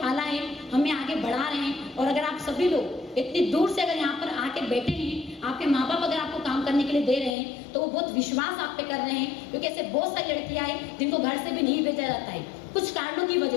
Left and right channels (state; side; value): drops out; right; at 7.4 s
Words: है, हमें आगे बढ़ा रहे हैं। और अगर आप सभी लोग इतनी दूर से अगर यहाँ पर आके बैठे हैं, आपके माँ बाप अगर आपको काम करने के लिए दे रहे हैं तो वो बहुत विश्वास आप पे कर रहे हैं, क्योंकि ऐसे बहुत सारी लड़कियां हैं जिनको घर से भी नहीं भेजा जाता है कुछ कारणों की